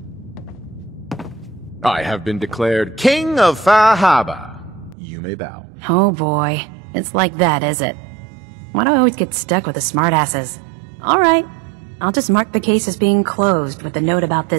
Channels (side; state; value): left; drops out; at 5.0 s